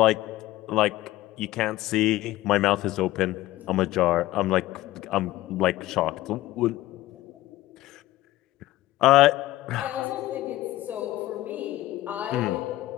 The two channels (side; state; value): right; quieter; 16.4 dB